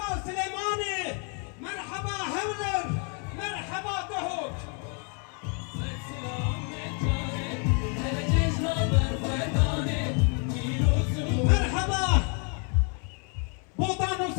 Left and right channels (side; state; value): right; quieter; 38.5 dB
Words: سلیمانی مرحبا هولر مرحبا دهوک مرحبا بودان و